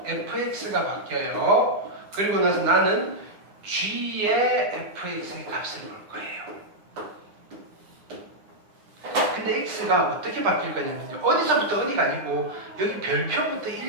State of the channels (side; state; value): left; late; 9.9 ms